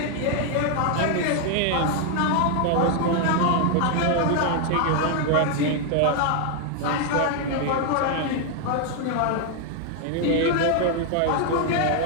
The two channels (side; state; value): both; different; correlation 0.00